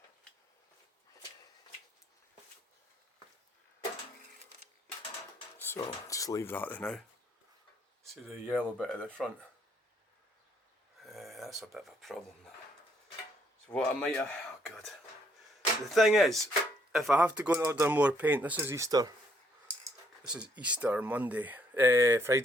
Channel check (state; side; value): normal; both; correlation 0.69